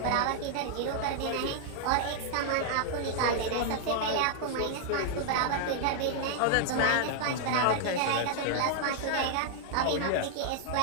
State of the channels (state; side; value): different; both; correlation -0.01